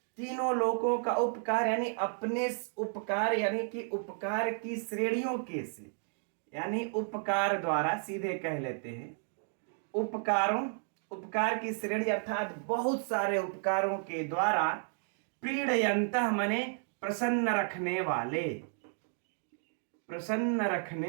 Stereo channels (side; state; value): left; silent; 56 dB below the other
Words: तीनों लोकों का उपकार यानी अपने उपकार यानी कि उपकार की श्रेणियों के से, यानी उपकार द्वारा सीधे कह लेते हैं, उपकारों, उपकार की श्रेणी अर्थात बहुत सारे उपकारों के द्वारा प्रीडयन्तः माने प्रसन्न रखने वाले, प्रसन्न